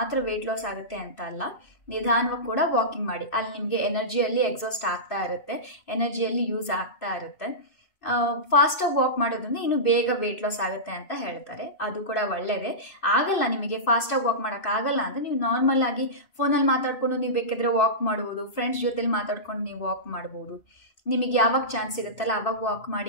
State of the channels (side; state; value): right; late; 2.6 ms